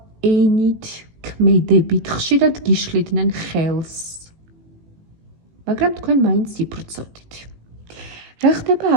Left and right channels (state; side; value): late; left; 18 ms